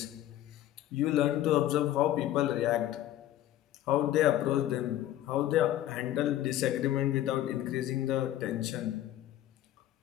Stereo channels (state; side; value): quieter; right; 13.1 dB